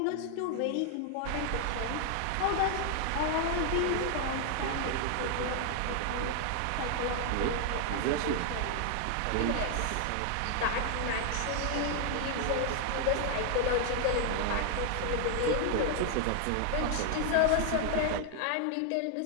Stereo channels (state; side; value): different; both; correlation 0.00